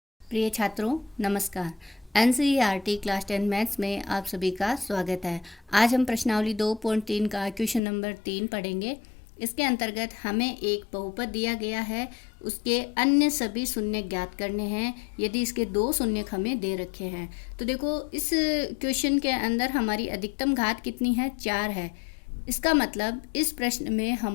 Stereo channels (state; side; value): drops out; right; at 7.8 s